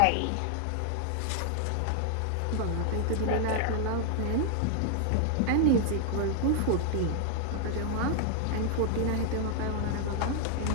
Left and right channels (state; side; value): different; both; correlation 0.00